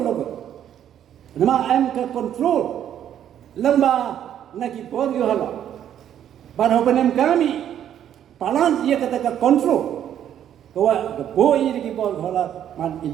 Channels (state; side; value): quieter; left; 10.2 dB